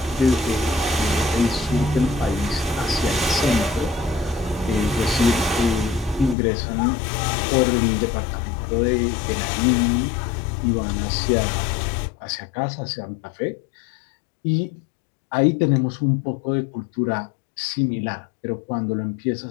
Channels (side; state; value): right; drops out; at 6.4 s